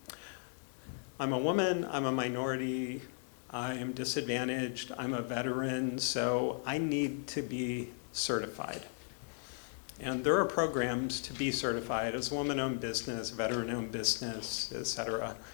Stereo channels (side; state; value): right; silent; digital silence